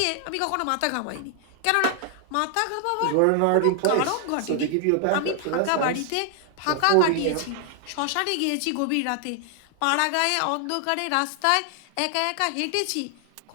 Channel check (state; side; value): different; both; correlation 0.00